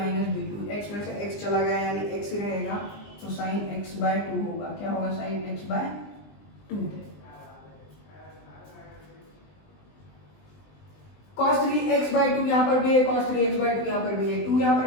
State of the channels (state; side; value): late; right; 20 ms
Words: b, 2x में से x चला गया यानी x ही रहेगा, तो साइन x बाय 2 होगा। क्या होगा sine x by 2। cos 3x by 2 यहाँ पर भी है, cos 3x बाय 2 यहाँ पर भी है, 2 यहाँ